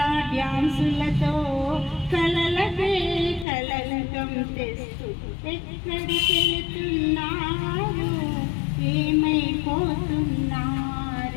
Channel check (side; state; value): right; drops out; at 3.5 s